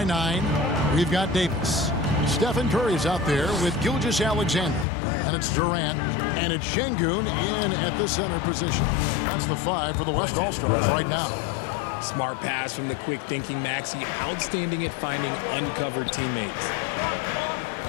9. We've got Davis. Stephen Curry's out there with Gilgeous-Alexander. And it's Durant. And it's Şengün in at the center position. That's the 5 for the West All-Stars right now. Smart pass from the quick-thinking Maxey. Outstanding at finding uncovered teammates.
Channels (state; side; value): drops out; right; at 4.9 s